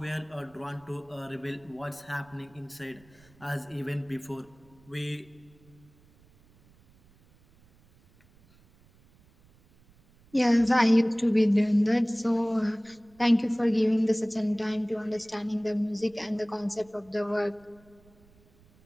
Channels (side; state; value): right; noise; rumble, 29 dB below the sound